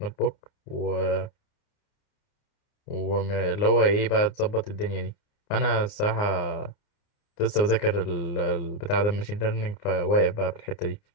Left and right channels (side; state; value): right; late; 29 ms